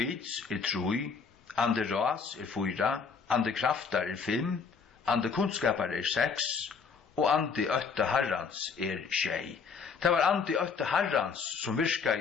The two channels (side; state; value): right; quieter; 5.6 dB